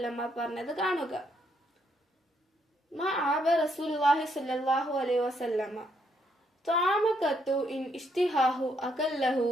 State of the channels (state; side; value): normal; both; correlation 0.74